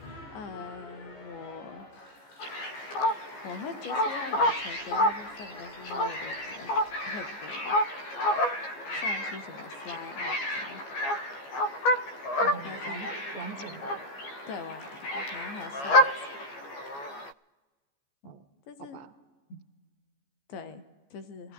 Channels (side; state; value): right; late; 14 ms